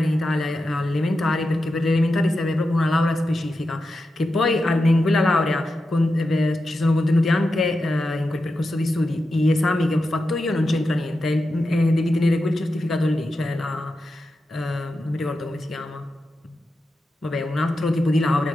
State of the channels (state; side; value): normal; both; correlation 0.90